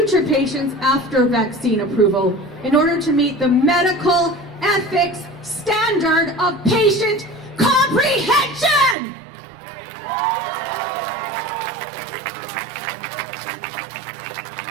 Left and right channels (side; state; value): left; drops out; at 9.0 s